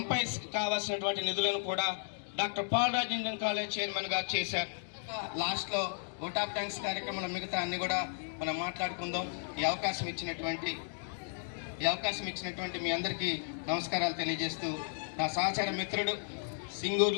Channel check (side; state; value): right; silent; digital silence